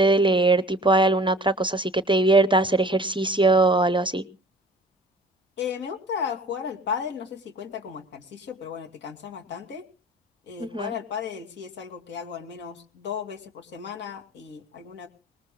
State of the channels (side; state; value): both; normal; correlation 0.48